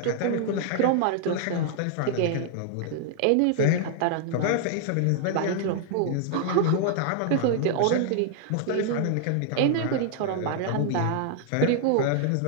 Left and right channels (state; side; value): different; both; correlation -0.01